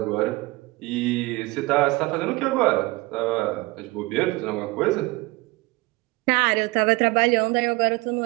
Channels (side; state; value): left; quieter; 22.9 dB